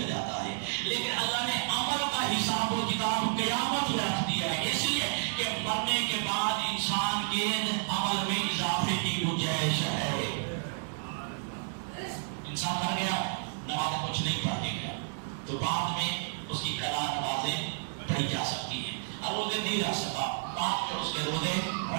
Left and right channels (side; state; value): left; silent; digital silence